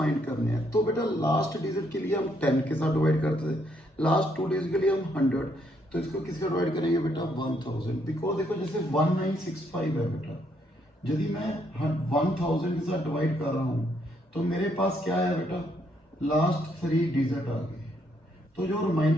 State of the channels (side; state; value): both; normal; correlation 0.73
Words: करने हैं। तो बेटा लास्ट डिजिट के लिए हम 10 के साथ डिवाइड करते थे, लास्ट टू डिजिट के लिए हम 100, तो इसको किसका डिवाइड करेंगे बेटा 1000। बिकॉज देखो जैसे 1965 है बेटा, यदि मैं 1000 के साथ डिवाइड कर रहा हूँ तो मेरे पास क्या है बेटा, लास्ट थ्री डिजिट आ गए, तो जो